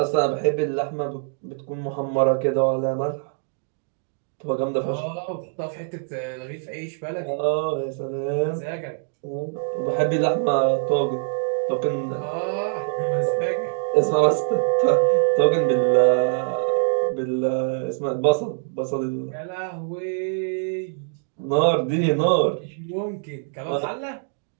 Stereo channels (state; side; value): silent; left; digital silence